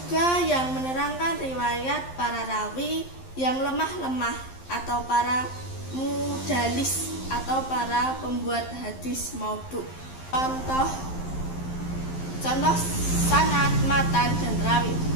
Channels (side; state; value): right; late; 11 ms